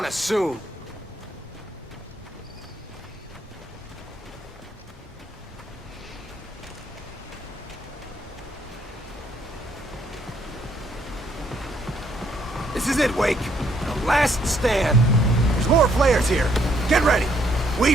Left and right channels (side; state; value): both; normal; correlation 0.69